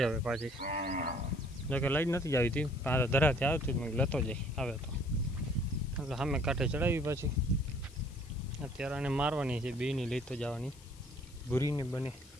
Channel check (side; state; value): left; noise; hiss, 23 dB below the sound